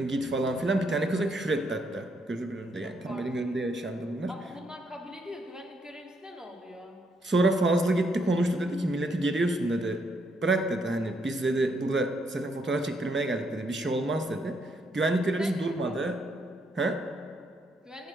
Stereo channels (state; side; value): normal; both; correlation 0.74